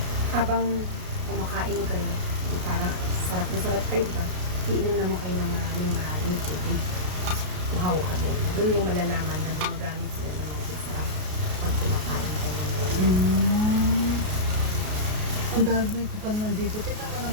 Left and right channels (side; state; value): left; late; 33 ms